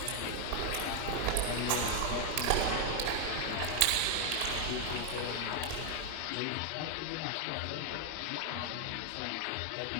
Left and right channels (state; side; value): different; both; correlation 0.00